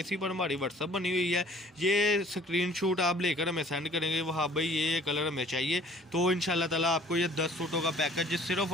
पर हमारी व्हाट्सअप बनी हुई है। ये स्क्रीनशॉट आप लेकर हमें सेंड करेंगे वहाँ भाई ये कलर हमें चाहिए तो इंशाल्लाह ताला आपको ये 10 सूटों का पैकेज सिर्फ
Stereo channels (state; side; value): normal; both; correlation 0.53